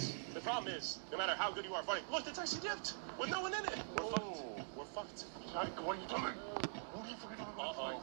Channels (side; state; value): left; silent; digital silence